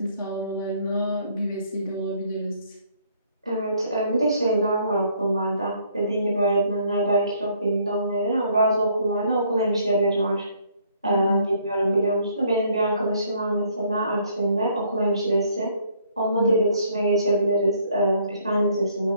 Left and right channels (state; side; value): inverted; both; correlation -0.64